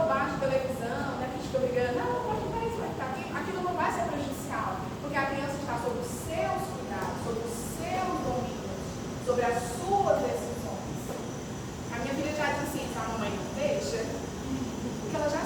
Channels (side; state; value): both; identical; correlation 1.00